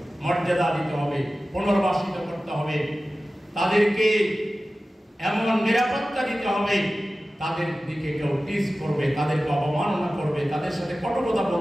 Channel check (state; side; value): normal; both; correlation 0.95